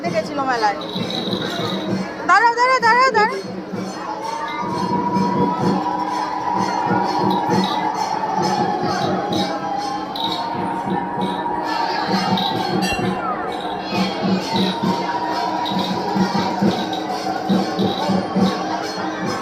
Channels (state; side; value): identical; both; correlation 1.00